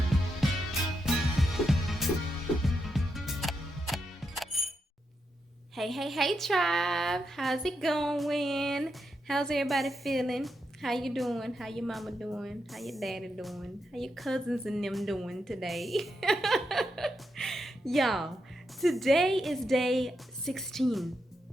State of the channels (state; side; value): normal; both; correlation 0.84